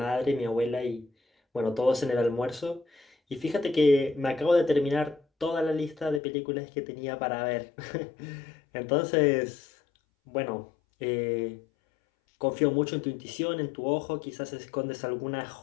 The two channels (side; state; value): right; drops out; at 6.2 s